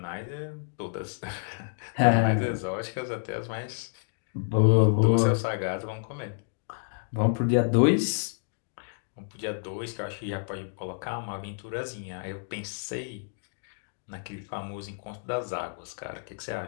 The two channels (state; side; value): silent; right; digital silence